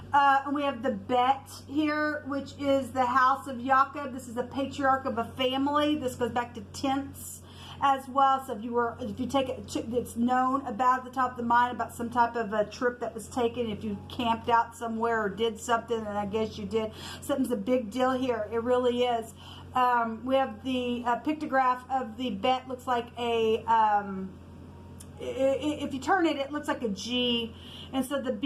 And we have the Bet here, which is the house of Jacob. This is the patriarch of a family. This goes back to tenths as well. So if you take it, it's known about at the top of the mind about some type of a trip that was taken. If you camped out somewhere or did something, and I guess you did, something's a big deal here. It really is. We have the pictograph of the Bet. Looks like a if you turn it, it looks like a G. And so the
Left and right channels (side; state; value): both; identical; correlation 1.00